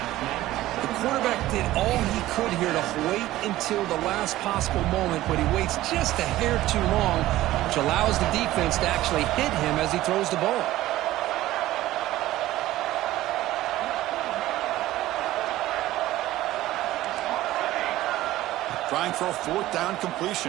The quarterback did all he could here to wait until the last possible moment, but he waits just a hair too long, which allows the defense to actually hit him as he throws the ball. Trying for a 4th down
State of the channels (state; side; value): quieter; left; 15.6 dB